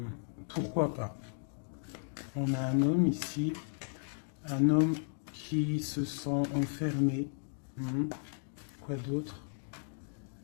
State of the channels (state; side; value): silent; right; digital silence